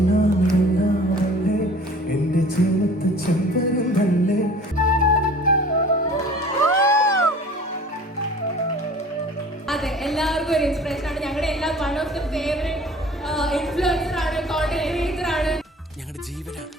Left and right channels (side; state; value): both; normal; correlation 0.47